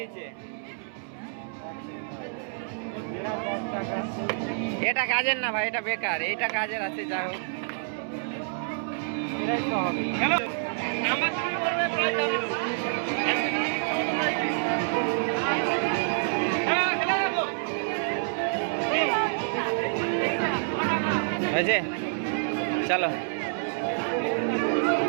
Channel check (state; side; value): silent; left; 60 dB below the other